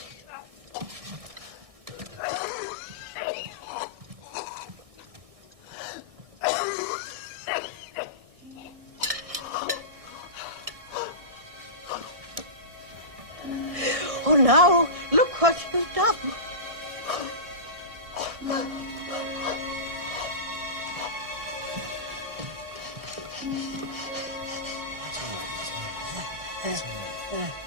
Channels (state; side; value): late; left; 1.6 ms